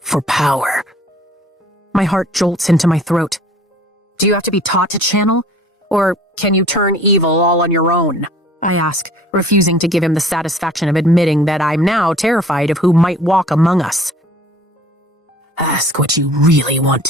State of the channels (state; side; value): normal; both; correlation 0.51